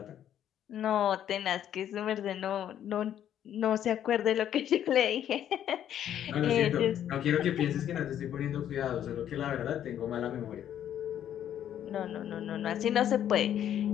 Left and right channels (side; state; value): right; quieter; 10.4 dB